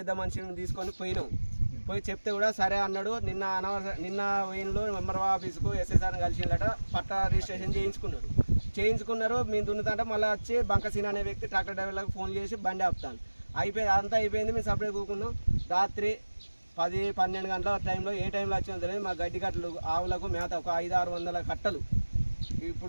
మనిషిని తీసుకొని పోయి చెప్తే కూడా సరే అన్నాడు. నిన్న వెయిన్లో ఎంఆర్ఓ ఆఫీసుకు ఎస్ఐసార్ని కలిసిందట. పట్టా రిజిస్ట్రేషన్ చేయించుకున్నారు. మేము దున్నుతుంటే మళ్ళీ వచ్చి బంకసీన అనే వ్యక్తి ట్రాక్టర్ డ్రైవర్లకు ఫోన్ చేసి బండి ఆపుతాను. అంతా అయిపోయింది. మేము సపరేట్ కూకున్నాం. రాత్రి 10-12 గంటల టైంలో ఏ టైంలో వచ్చినా తెలియదు మా గడ్డి కట్టలు ఆవులకు మేత ఒక 500-600 కట్టలు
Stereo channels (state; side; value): inverted; both; correlation -1.00